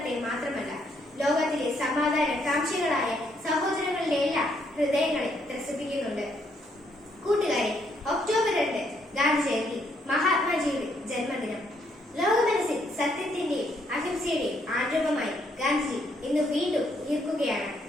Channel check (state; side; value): normal; both; correlation 0.72